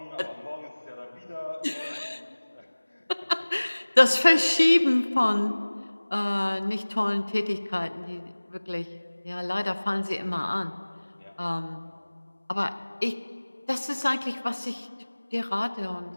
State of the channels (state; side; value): inverted; both; correlation -1.00